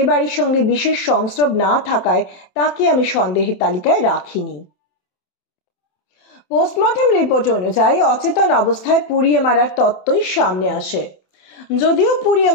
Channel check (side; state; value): right; late; 27 ms